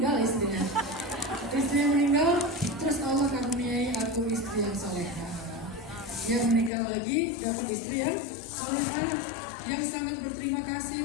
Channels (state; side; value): drops out; right; at 6.7 s